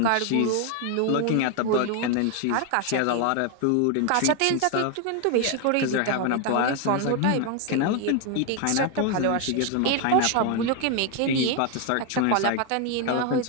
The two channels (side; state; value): both; different; correlation 0.01